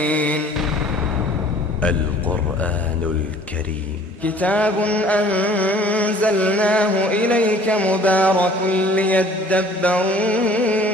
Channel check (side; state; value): both; normal; correlation 0.52